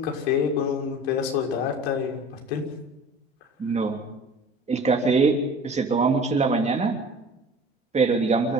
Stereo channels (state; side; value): normal; both; correlation 0.43